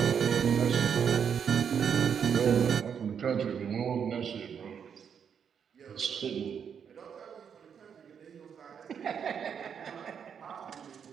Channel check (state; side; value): quieter; left; 7.5 dB